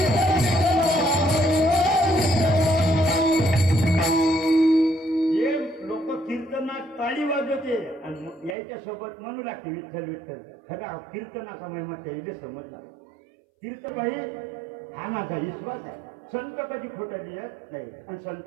ताळी वाजवते आणि यायच्या सोबत म्हणू लागते विठ्ठल विठ्ठल. खरा कीर्तनाचा महिमा त्याला समजला. कीर्तबाई हा माझा विश्वास आहे. संत कधी खोटं लिहत नाही आणि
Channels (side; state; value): left; drops out; at 8.6 s